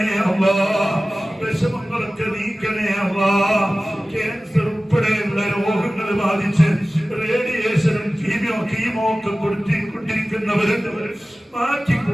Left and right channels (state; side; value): normal; both; correlation 0.97